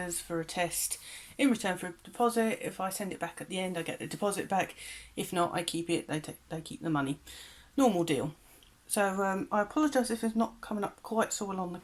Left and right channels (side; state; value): both; identical; correlation 1.00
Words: for a test in return for a deposit. If I send it back at the end, I get the deposit back. If not, I keep it, they keep the money. Normal deal. So I apologise if it's not coming up quite so well on the